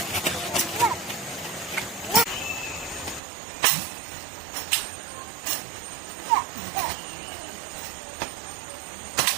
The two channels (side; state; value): left; drops out; at 3.2 s